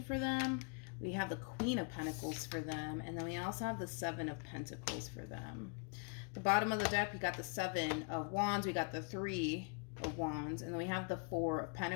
for them. We have the Queen of Pentacles for them, and then we also have the Seven of Pentacles for them. The bottom of the deck, we got the Seven of Wands, we got the Three of Wands, and then we have the Four of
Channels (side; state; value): right; quieter; 36.1 dB